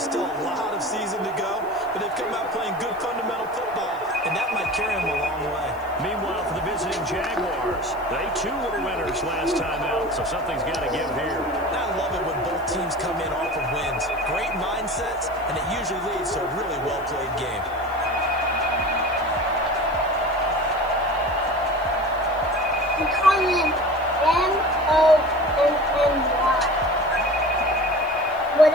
still a lot of season to go, but they've come out playing good fundamental football, and that might carry them a long way. Meanwhile, for the visiting Jaguars, they too were winners last time out, so something's got to give here. I love it when both teams come in off of wins. Great mindsets, and it usually leads to a really well-played game. We call him M-O-N-N-Y. Well,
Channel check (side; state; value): left; noise; hiss, 26 dB below the sound